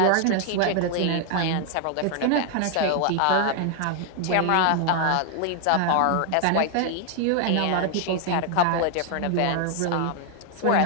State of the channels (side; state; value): both; different; correlation 0.00